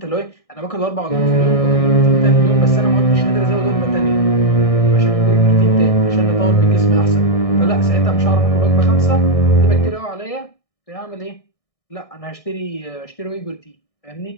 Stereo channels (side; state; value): right; late; 1.6 ms